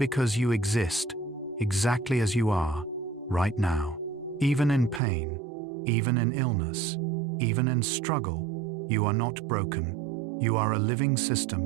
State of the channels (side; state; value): left; drops out; at 5.0 s